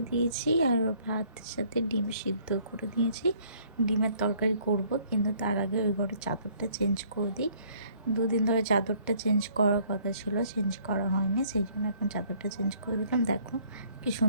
দিয়েছি আর ভাতের সাথে ডিম সিদ্ধ করে দিয়েছি। ডিমের তরকারি করব, কিন্তু তার আগে ওই ঘরে চাদরটা চেঞ্জ করে দিই। দুদিন ধরে চাদরটা চেঞ্জ করার কথা ছিল, চেঞ্জ করা হয়নি, সেই জন্য এখন চাদরটা চেঞ্জ করে দিলাম। দেখো কি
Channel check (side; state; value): both; inverted; correlation -0.61